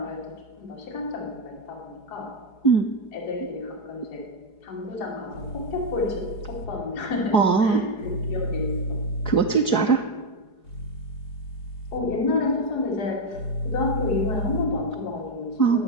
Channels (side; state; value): right; late; 4.8 ms